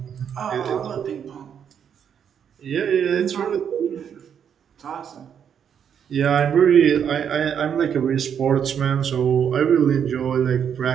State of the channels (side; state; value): left; quieter; 8.1 dB